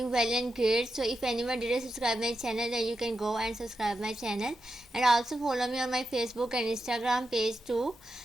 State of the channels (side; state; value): both; normal; correlation 0.87